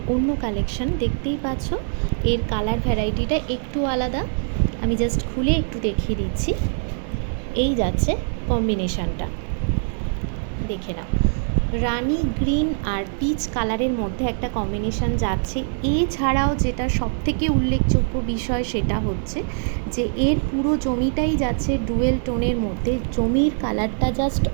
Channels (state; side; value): silent; left; 64 dB below the other